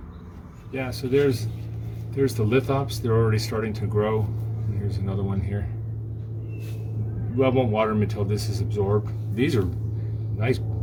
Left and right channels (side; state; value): both; identical; correlation 1.00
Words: Yeah, so there's the lithops. They're already starting to grow. And here's another one here. Well, I won't water them until this is absorbed. These are nice